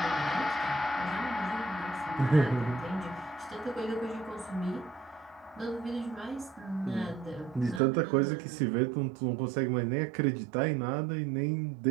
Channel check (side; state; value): left; drops out; at 7.8 s